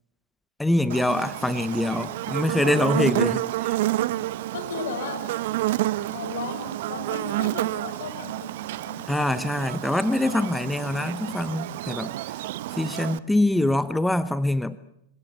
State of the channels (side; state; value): both; normal; correlation 0.54